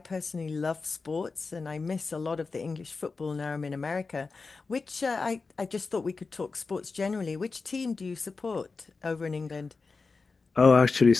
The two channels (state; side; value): quieter; right; 4.3 dB